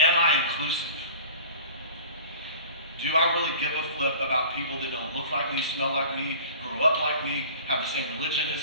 I inclusive? Do I really give a flip about people that don't look like me, smell like me, grow up like me, have the same religion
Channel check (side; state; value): both; inverted; correlation -0.41